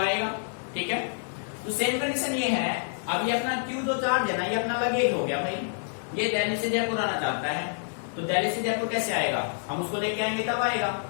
आएगा, ठीक है। तो सेम कंडीशन ये है। अब ये अपना क्यू जो चार्ज है ना, ये अपना लगेज हो गया भाई, ये दिल्ली से जयपुर आना चाहता है, तो दिल्ली से जयपुर कैसे आएगा? हम उसको लेके आएंगे तब आएगा।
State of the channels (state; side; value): silent; right; digital silence